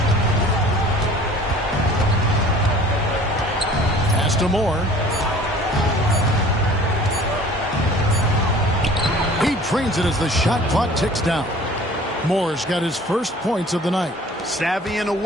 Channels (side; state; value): both; normal; correlation 0.48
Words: Pass to Moore. He trains it as the shot clock ticks down. Moore's got his first points of the night. Savvy and